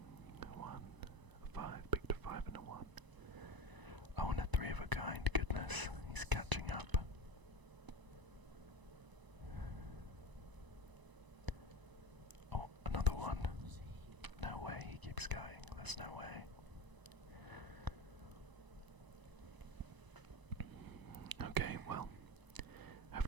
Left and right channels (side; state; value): left; late; 1.0 ms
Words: 1. A 5. Picked a 5 and a 1. Oh, and a 3 of a kind. Goodness. He's catching up. Oh, another 1. No way. He keeps going. There's no way. Okay, well,